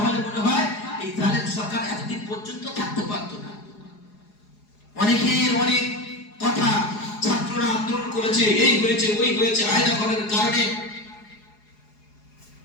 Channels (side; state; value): right; late; 4.8 ms